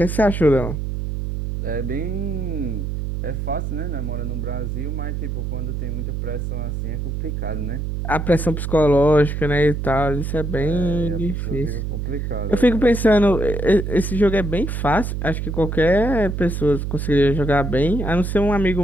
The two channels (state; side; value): noise; right; hum, 3 dB below the sound